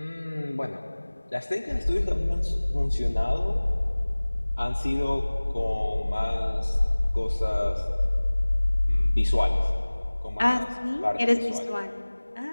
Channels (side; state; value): both; inverted; correlation -1.00